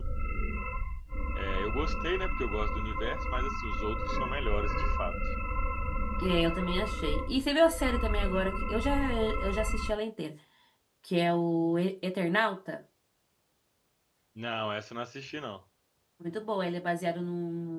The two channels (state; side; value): identical; both; correlation 1.00